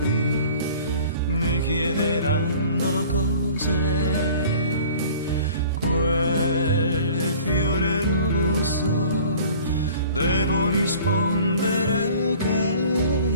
mi chiederanno cos'è quel fiore rosso, devo rispondere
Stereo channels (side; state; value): both; inverted; correlation -0.48